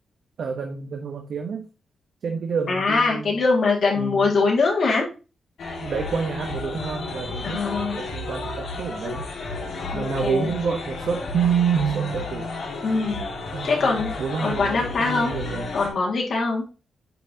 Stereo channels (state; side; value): normal; both; correlation 0.75